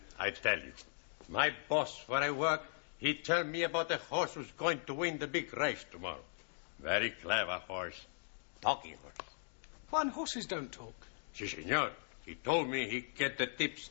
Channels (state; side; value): silent; right; digital silence